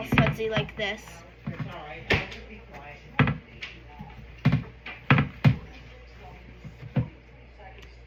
sudsy like this.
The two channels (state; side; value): identical; both; correlation 1.00